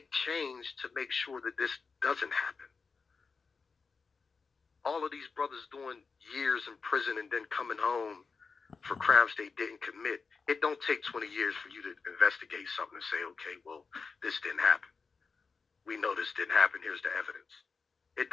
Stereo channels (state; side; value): quieter; right; 4.9 dB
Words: change to make sure that this doesn't happen? All of these brothers doing years in prison and then coming home for crimes they didn't commit. It don't take 20 years for you to investigate something and say, okay, well, this didn't happen. We know this didn't happen. Here's the evidence. It